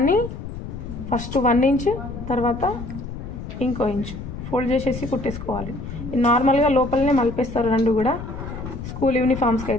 ఫస్ట్ 1 ఇంచ్ తర్వాత ఇంకో ఇంచ్ ఫోల్డ్ చేసేసి కుట్టేసుకోవాలి. నార్మల్గా లోపలనే మలిపేస్తారు రెండు కూడా స్కూల్ యూనిఫామ్స్కి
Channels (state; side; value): noise; left; rumble, 9 dB below the sound